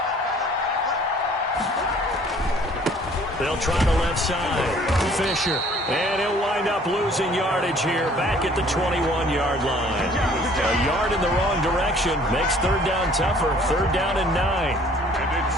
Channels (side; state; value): both; normal; correlation 0.55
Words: They'll try the left side. Fisher. And he'll wind up losing yardage here back at the 21-yard line. A yard in the wrong direction makes 3rd down tougher. 3rd down and 9. And